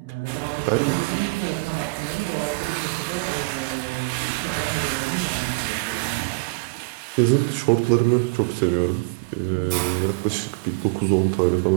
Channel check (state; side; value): quieter; left; 27.9 dB